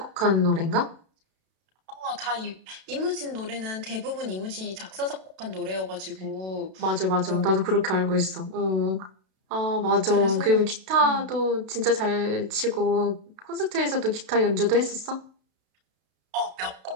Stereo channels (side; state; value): left; late; 32 ms